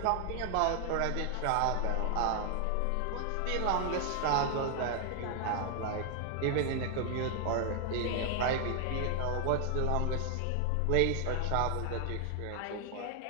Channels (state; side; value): different; both; correlation 0.00